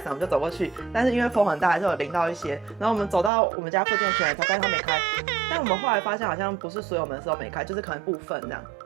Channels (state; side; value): drops out; left; at 3.3 s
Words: 我们就走过去，但是因为风很大，还是有淋到一些。然后我们走到我们家附近的全联才发现它没开，但我们后来发现好像不是所有门市都没开，就是可能部分这样。